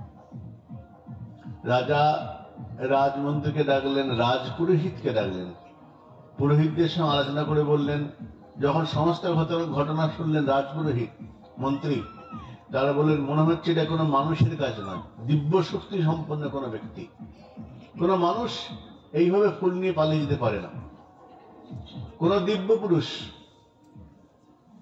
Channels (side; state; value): both; identical; correlation 1.00